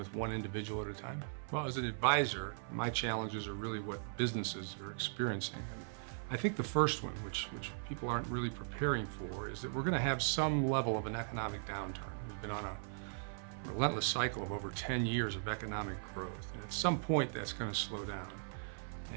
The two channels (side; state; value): left; silent; 52 dB below the other